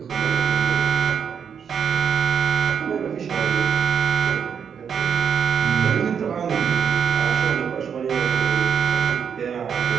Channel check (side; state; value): left; quieter; 7.3 dB